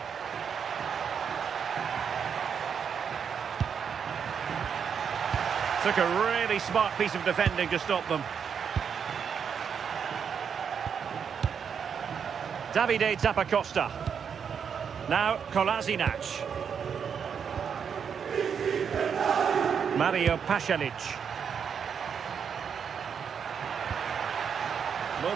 Took a really smart piece of defending to stop them. Davide Zappacosta. Now Kolasinac. Mario Pasalic.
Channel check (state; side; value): quieter; left; 7.1 dB